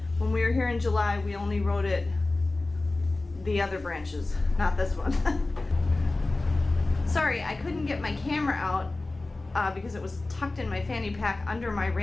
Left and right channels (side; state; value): right; quieter; 3.1 dB